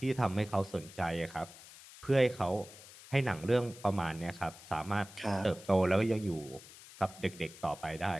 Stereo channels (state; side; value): noise; left; hiss, 18 dB below the sound